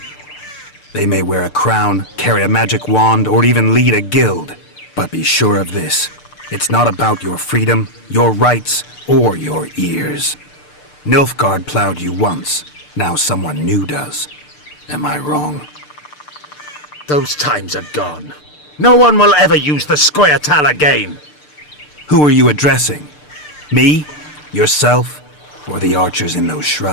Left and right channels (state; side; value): late; right; 6.7 ms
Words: They may wear a crown, carry a magic wand, or even lead a guild. But be sure of this. It's not about your freedom, your rights, or your ears. Nilfgaard plowed you once. Now someone new does. Am I wrong? Those times are gone. No one will ever use the Scoia'tael again. Who are you addressing? Me? Yourself? Or the archers in those